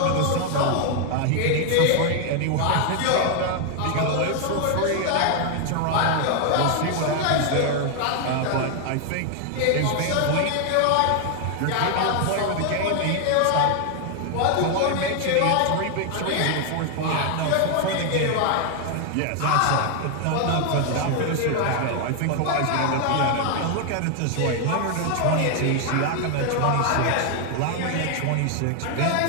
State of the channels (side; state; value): both; different; correlation 0.00